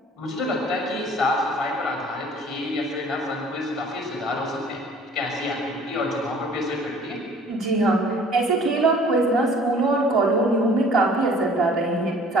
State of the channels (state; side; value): normal; both; correlation 0.51